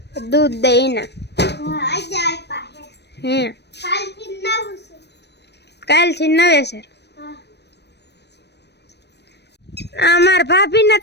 દૂધ દઈ ના હે કાલથી નવેસર. અમાર ભાભી ને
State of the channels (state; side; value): late; right; 0.49 ms